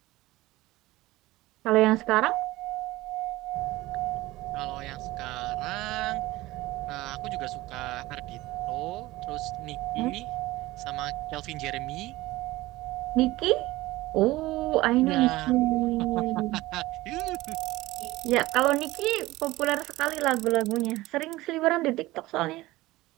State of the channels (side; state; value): left; quieter; 18.6 dB